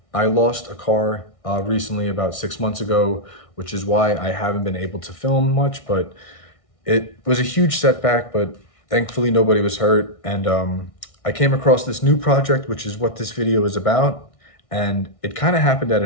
I lost a car recently about 6 months ago, which is why I haven't been able to film much, but it was a huge setback, but thankfully nobody was hurt. And I came across this new project, which is what this video is about. And it kind of happened out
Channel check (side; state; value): right; late; 1.6 ms